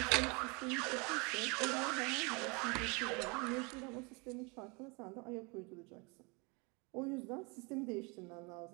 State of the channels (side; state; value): left; quieter; 29.7 dB